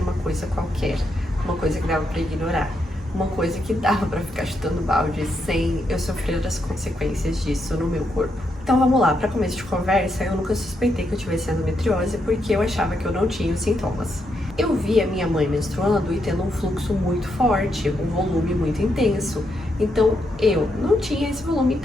uma coisa qualquer, uma coisa que dava para ignorar, uma coisa que dava para ficar chutando balde sem eu sofrer as consequências disso no meu corpo. Então vamos lá, para começo de conversa, eu nunca suspeitei que eu tivesse endometriose porque eu achava que eu não tinha os sintomas. Eu vi a minha mãe menstruando e tendo um fluxo muito forte, um volume muito intenso. Então eu não tinha esse volume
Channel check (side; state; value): both; normal; correlation 0.80